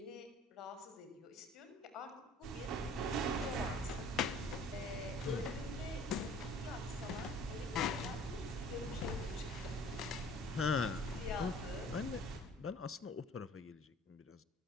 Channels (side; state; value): both; normal; correlation 0.50